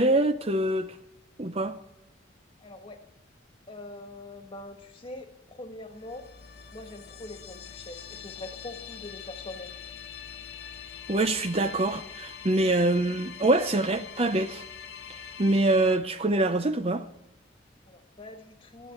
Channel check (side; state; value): both; normal; correlation 0.43